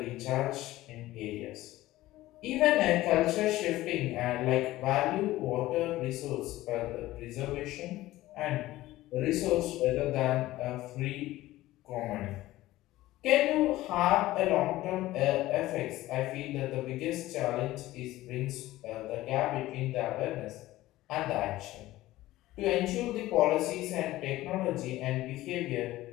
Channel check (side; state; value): right; quieter; 16.6 dB